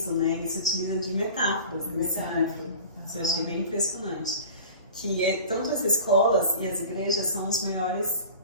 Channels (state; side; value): inverted; both; correlation -0.38